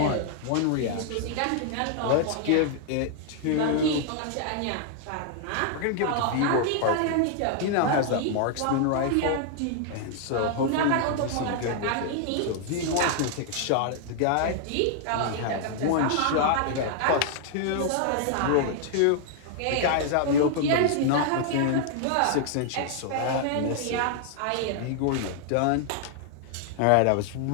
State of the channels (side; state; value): both; different; correlation 0.00